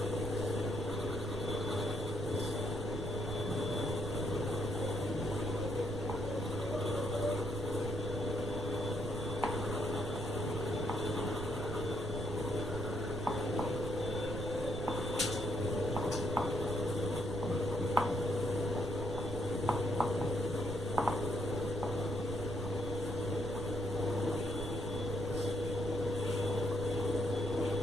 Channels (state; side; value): noise; right; rumble, 8 dB below the sound